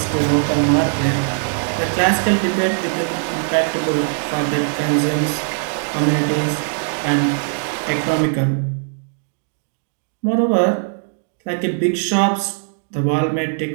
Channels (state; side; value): silent; left; digital silence